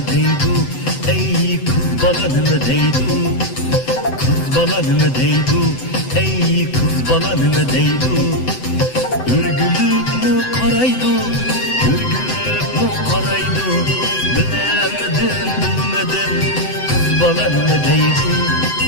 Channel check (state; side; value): late; right; 7.9 ms